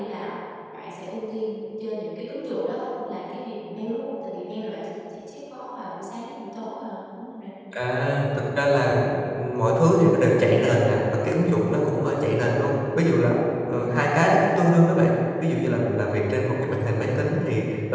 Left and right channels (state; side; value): identical; both; correlation 1.00